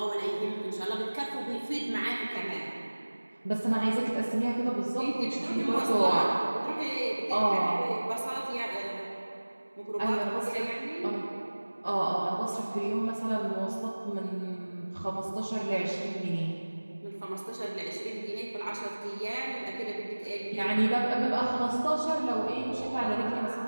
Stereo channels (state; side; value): inverted; both; correlation -1.00